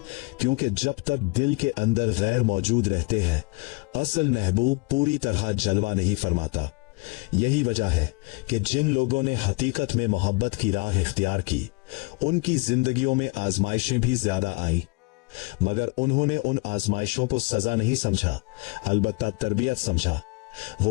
क्योंकि जब तक दिल के अंदर गैर मौजूद रहते हैं असल महबूब पूरी तरह जलवा नहीं फरमाता। यही वजह है कि जिन लोगों ने हकीकत में मोहब्बत की राह इख्तियार की उनकी जिंदगियों में आजमाइशें भी ज्यादा आई, मगर उन्होंने उन आजमाइशों को सजा नहीं समझा, अलबत्ता तरबियत समझा।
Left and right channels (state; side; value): quieter; right; 27.4 dB